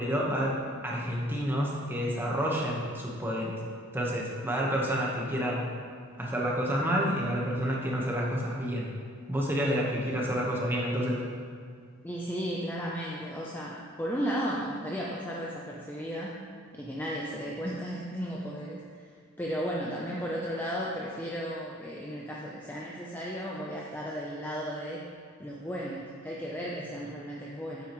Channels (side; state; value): both; normal; correlation 0.60